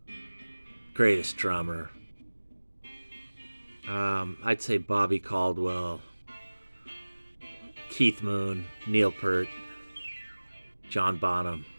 greatest drummer. I'd say Bobby Caldwell, Keith Moon, Neil Peart, John Bonham.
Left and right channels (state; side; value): inverted; both; correlation -1.00